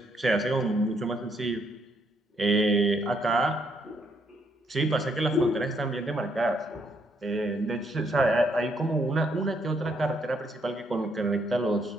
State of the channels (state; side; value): normal; both; correlation 0.73